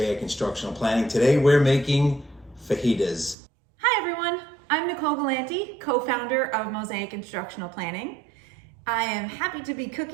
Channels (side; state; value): left; drops out; at 3.4 s